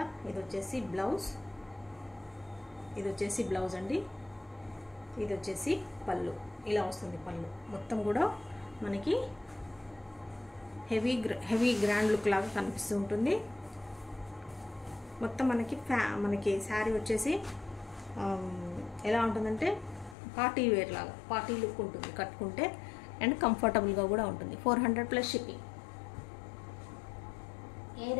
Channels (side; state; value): right; drops out; at 20.2 s